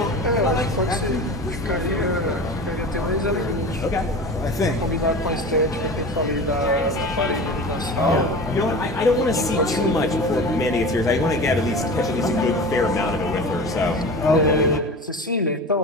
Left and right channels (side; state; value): both; normal; correlation 0.33